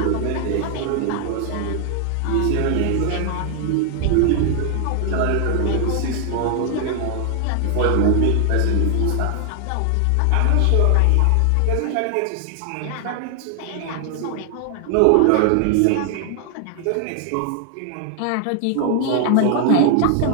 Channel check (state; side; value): different; both; correlation 0.00